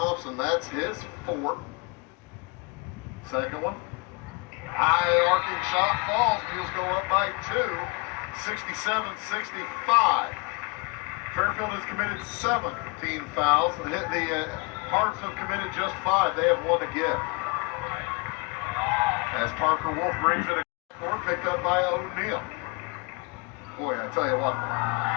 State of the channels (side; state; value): right; quieter; 29.0 dB